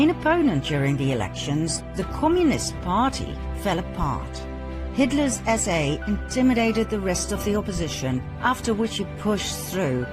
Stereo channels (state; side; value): identical; both; correlation 1.00